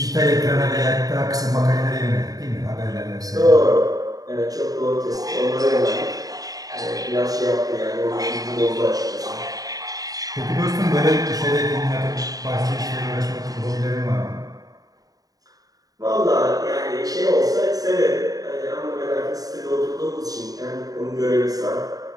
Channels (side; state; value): left; late; 0.18 ms